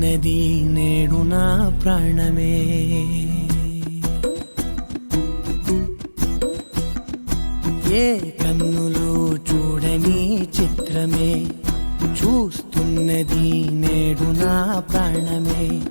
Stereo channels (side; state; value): both; inverted; correlation -1.00